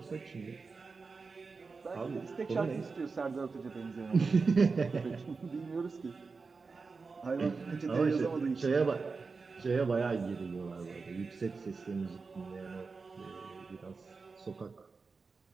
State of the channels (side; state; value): left; quieter; 4.5 dB